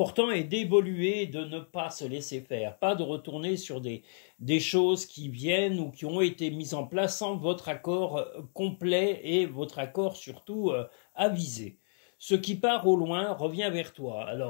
est d'évoluer, de ne pas se laisser faire, pas de retourner sur des choses qui viennent ou qui ont été mises en place sans votre accord complet et votre accord surtout avisé. Ce qui part au loin revient vers toi.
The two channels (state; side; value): silent; right; digital silence